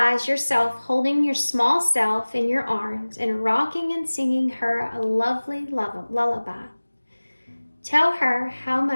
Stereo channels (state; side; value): inverted; both; correlation -1.00